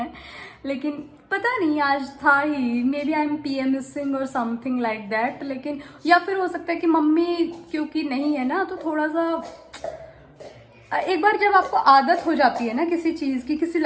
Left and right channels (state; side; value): identical; both; correlation 1.00